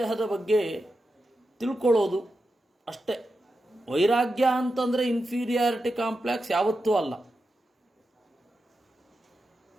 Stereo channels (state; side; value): normal; both; correlation 0.89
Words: ಬಗ್ಗೆ ತಿಳ್ಕೊಳ್ಳೋದು ಅಷ್ಟೇ. ವೈರಾಗ್ಯ ಅಂತಂದರೆ ಇನ್ಫೀರಿಯಾರಿಟಿ ಕಾಂಪ್ಲೆಕ್ಸ್ ಯಾವತ್ತೂ ಅಲ್ಲ.